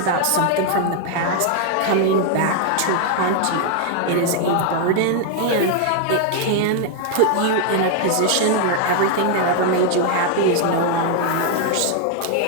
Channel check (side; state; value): both; different; correlation 0.00